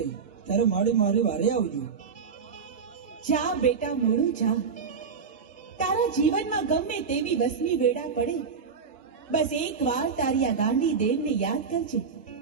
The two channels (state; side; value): quieter; left; 5.7 dB